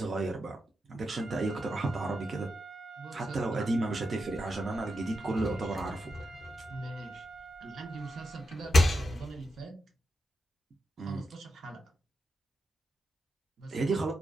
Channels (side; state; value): both; normal; correlation 0.87